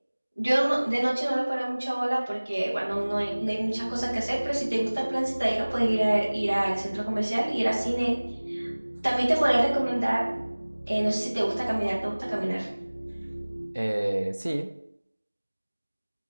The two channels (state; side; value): inverted; both; correlation -1.00